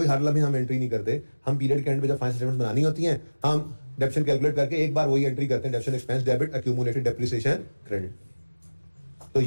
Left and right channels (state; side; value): inverted; both; correlation -1.00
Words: हर लम्हे हम एंट्री नहीं करते, हम पीरियड के एंड पे जब फाइनेंशियल स्टेटमेंट्स बनानी होती हैं, हम डेप्शन कैलकुलेट करके एक बार वही एंट्री करते हैं, डेप्शन expense debit accumulated depreciation credit. तो